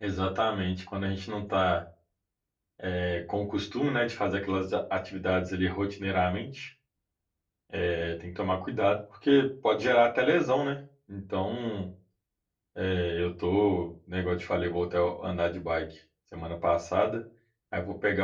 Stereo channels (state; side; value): identical; both; correlation 1.00